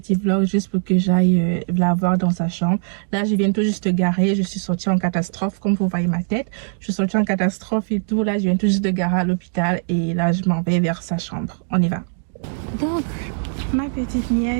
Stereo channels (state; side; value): silent; left; digital silence